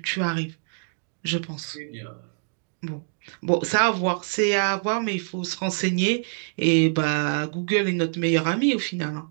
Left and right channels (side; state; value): left; silent; 62 dB below the other